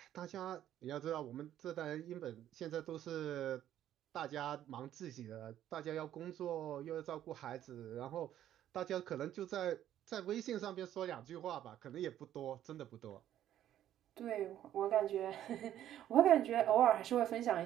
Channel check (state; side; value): quieter; left; 11.6 dB